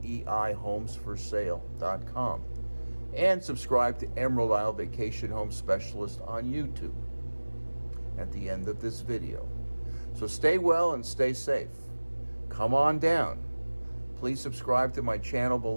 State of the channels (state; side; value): inverted; both; correlation -1.00